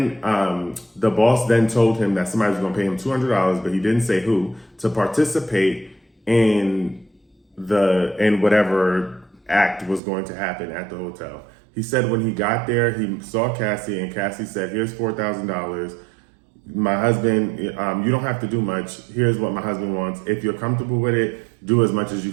the boss then told him that somebody was going to pay him $200, but he didn't say who, to participate in whatever act was going to happen at the hotel. He said when he got there, he saw Cassie, and Cassie said, here's $4,000. My husband, you don't have to do much. Here's what my husband wants. If you're comfortable with it, do as much as you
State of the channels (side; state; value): left; drops out; at 10.0 s